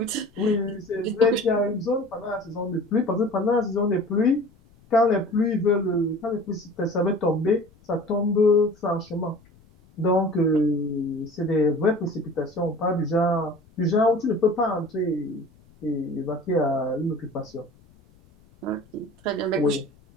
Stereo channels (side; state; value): left; noise; rumble, 29 dB below the sound